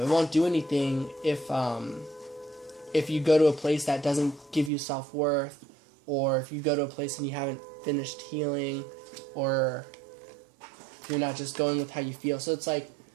won't do anything if you go to a place that doesn't give you self-worth, or if you go to a place and you haven't finished healing, or if you're not just going with how you feel. So it's like,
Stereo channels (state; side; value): drops out; left; at 4.7 s